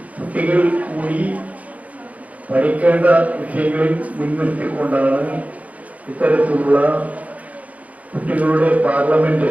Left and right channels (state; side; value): late; left; 0.071 ms